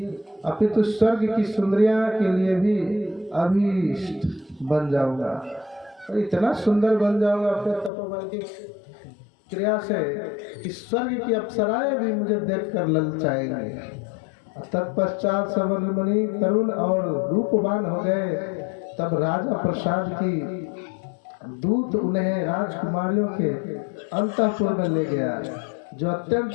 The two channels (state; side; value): drops out; right; at 7.9 s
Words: अपितु स्वर्ग की सुंदरियां के लिए भी अभीष्ट बन जाऊंगा। और इतना सुंदर बन जाऊंगा अपने तपोबल की क्रिया से कि स्वर्ग की अप्सराएं भी मुझे देखकर ललचाएंगी। तत्पश्चात सवर मुनि तरुण और रूपवान हो गए। तब राजा प्रसाद की दूत उन्हें राजकुमारियों के अंतःपुर में ले गया, जो